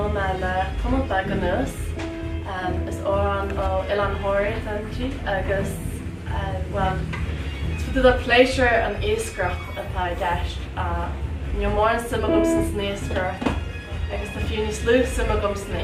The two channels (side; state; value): both; identical; correlation 1.00